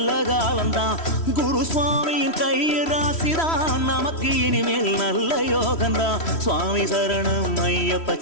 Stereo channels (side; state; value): right; late; 3.1 ms